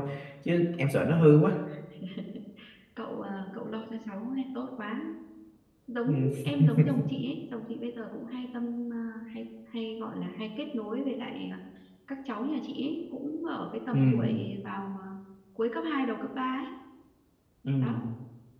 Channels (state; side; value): identical; both; correlation 1.00